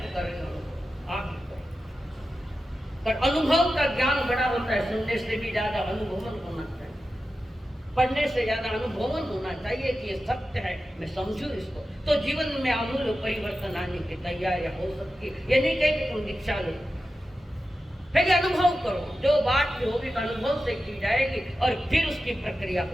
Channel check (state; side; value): normal; both; correlation 0.92